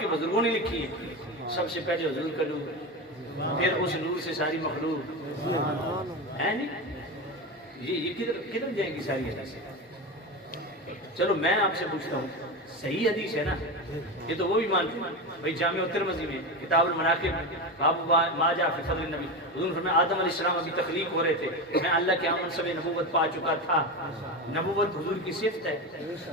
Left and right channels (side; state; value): both; normal; correlation 0.20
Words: بزرگوں نے لکھی ہیں، سب سے پہلے حضور کا نور، پھر اس نور سے ساری مخلوق ہے نہیں، یہ کدھر جائیں گی ساری حدیثیں؟ چلو میں آپ سے پوچھتا ہوں، صحیح حدیث ہے نا؟ یہ تو وہ بھی مانتے ہیں بھائی، جامع الترمذی میں کتاب المناقب باب ما جاء فی فضل النبی، حضور فرمایا آدم علیہ السلام ابھی تخلیق ہو رہے تھے، میں اللہ کے ہاں منصب نبوت پا چکا تھا۔ نبوت حضور کی صفت ہے،